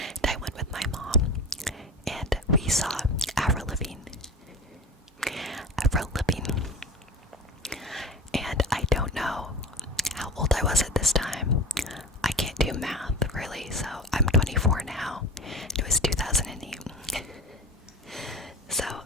I went with my mom, and we saw Avril Lavigne. And I don't know how old I was at this time. I can't do math, really, so I'm 24 now. It was 2008. So,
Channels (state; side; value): normal; both; correlation 0.33